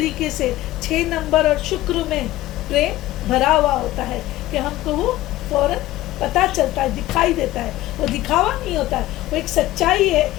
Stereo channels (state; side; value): quieter; right; 16.2 dB